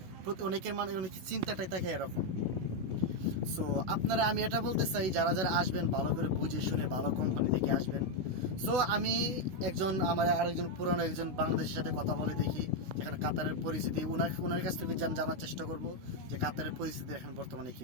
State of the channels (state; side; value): late; left; 16 ms